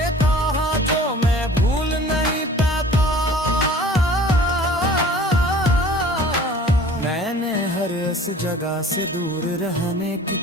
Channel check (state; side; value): normal; both; correlation 0.47